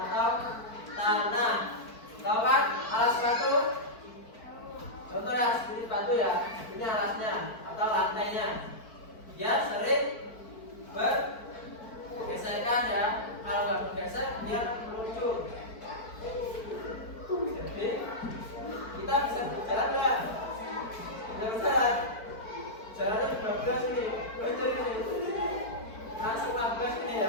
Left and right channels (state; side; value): late; right; 4.5 ms